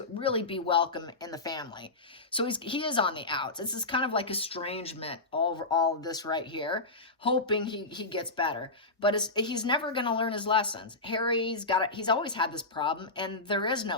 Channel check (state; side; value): quieter; right; 3.2 dB